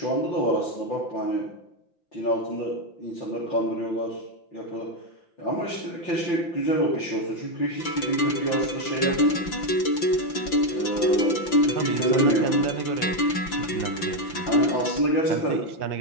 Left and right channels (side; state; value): right; late; 5.9 ms